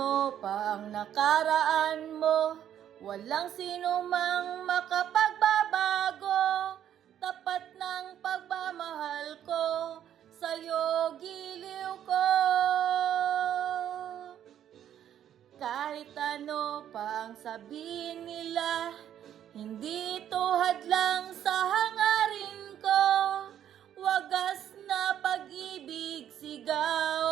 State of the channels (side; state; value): left; quieter; 10.3 dB